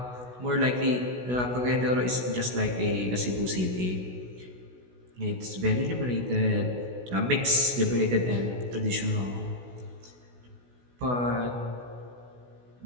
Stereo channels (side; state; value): left; late; 16 ms